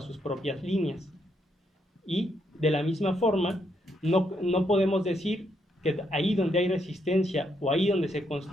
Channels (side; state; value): both; normal; correlation 0.76